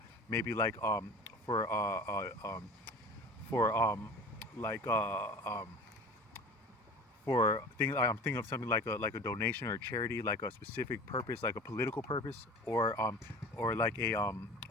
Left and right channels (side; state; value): both; normal; correlation 0.38